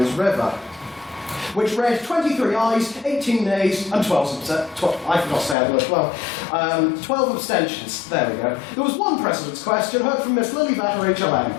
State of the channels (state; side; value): drops out; right; at 5.6 s